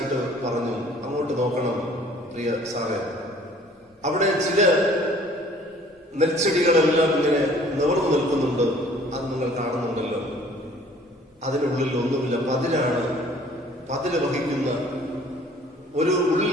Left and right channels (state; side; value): normal; both; correlation 0.54